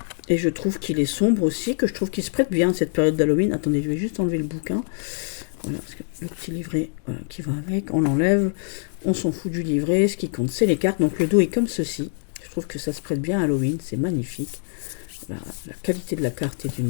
et je trouve qu'il est sombre aussi, que je trouve qu'il se prête bien à cette période d'Halloween. Attendez, je vais juste enlever le bouquin. Voilà, parce que le petit livret voilà, qui va avec, on l'enlève, on s'en fout du livret, ce qui compte c'est les cartes, donc le dos est comme ceci. Je trouve que ça se prête bien à Halloween, c'est magnifique. La qualité de la carte est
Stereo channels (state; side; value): silent; right; digital silence